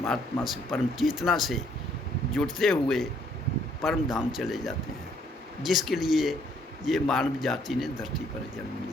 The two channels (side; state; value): both; normal; correlation 0.66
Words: से, परम चेतना से जुड़ते हुए परम धाम चले जाते हैं, जिसके लिए ये मानव जाति ने धरती पर जन्म